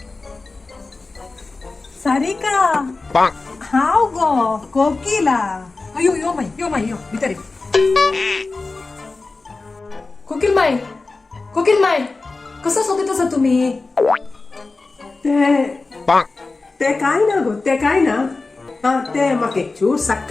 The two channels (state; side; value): quieter; right; 3.7 dB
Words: सारिका हाव गो कोकिला अयो यो माई यो भितर कोकिल माय कसं सोबत असा तुम्ही ते काय ना गो ते काय ना हा ते म्हाका एक चूर